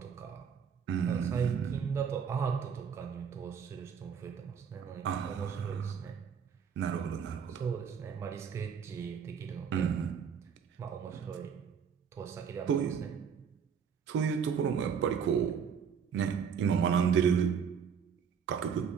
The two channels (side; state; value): left; quieter; 7.1 dB